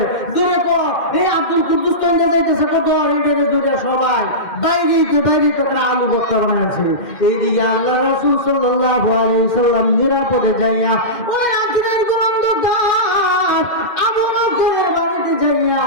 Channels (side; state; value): right; late; 2.1 ms